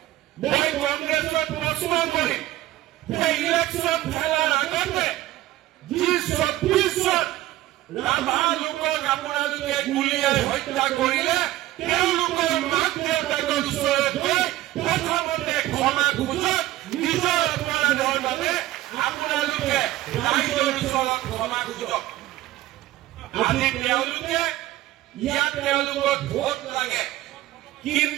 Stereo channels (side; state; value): left; quieter; 15.5 dB